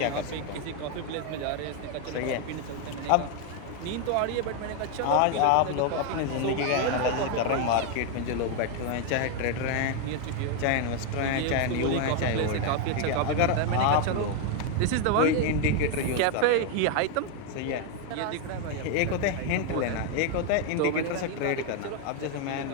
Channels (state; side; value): different; both; correlation 0.01